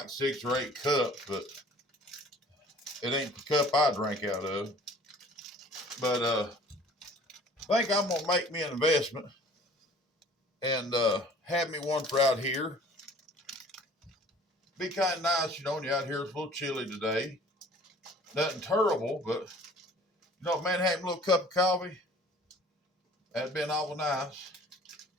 6 or 8 cups, but It ain't the cup I drink out of. But I think I'm gonna make me an investment and have me one for out here. Be kind of nice, you know, when you're out here. It's a little chilly today. Nothing terrible, but you know, man, having a little cup of coffee, that'd been awful nice.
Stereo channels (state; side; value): normal; both; correlation 0.50